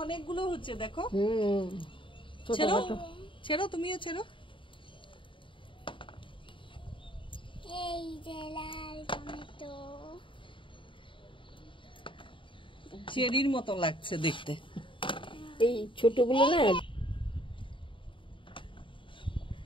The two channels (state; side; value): late; right; 0.25 ms